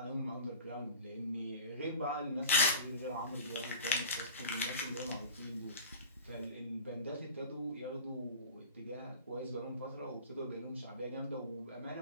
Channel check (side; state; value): both; inverted; correlation -0.37